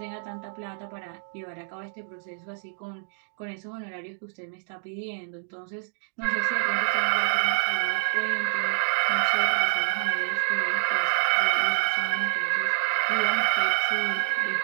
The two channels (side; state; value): left; silent; digital silence